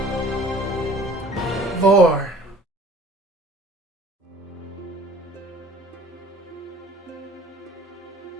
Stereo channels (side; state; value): both; normal; correlation 0.50